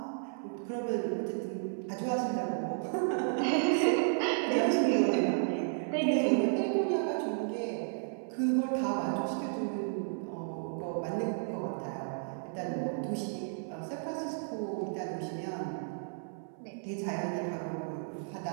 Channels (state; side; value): silent; left; 56 dB below the other